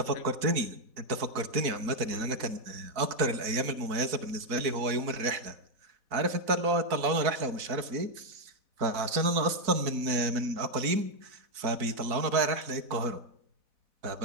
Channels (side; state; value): left; late; 4.5 ms